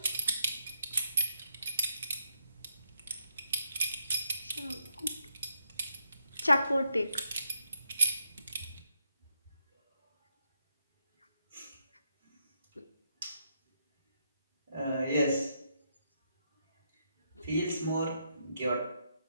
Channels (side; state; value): both; inverted; correlation -0.79